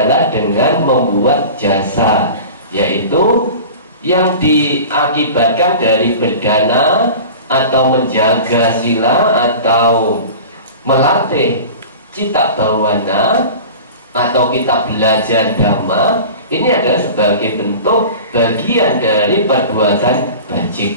dengan membuat jasa, yaitu yang diakibatkan dari berdana atau menjaga sila atau melatih cita bawana atau kita belajar dhamma. Ini adalah sebagai bentuk bagian dari perbuatan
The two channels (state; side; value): inverted; both; correlation -0.37